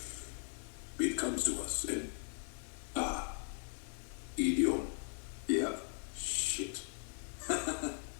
It comes to us and... idiom. Yep. Shit.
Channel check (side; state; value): right; silent; 52 dB below the other